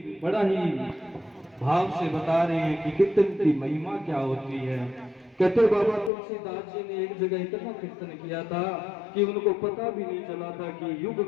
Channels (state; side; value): drops out; right; at 6.1 s